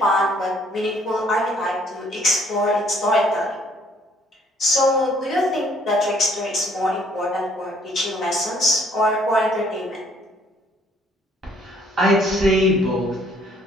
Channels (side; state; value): both; normal; correlation 0.63